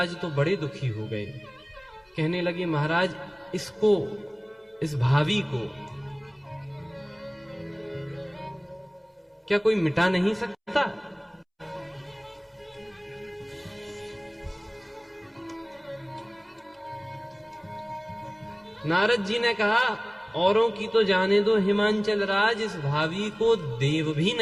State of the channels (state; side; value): identical; both; correlation 1.00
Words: तो बड़े दुखी हो गए। कहने लगे महाराज, इसको, इस भावी को क्या कोई मिटा नहीं सकता? नारद जी ने कहा, औरों की तो जाने दो हिमांचल राज, इस भावी को देव भी